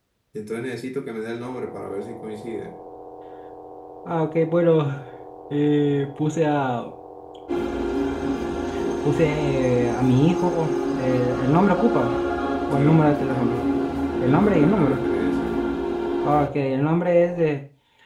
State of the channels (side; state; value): both; identical; correlation 1.00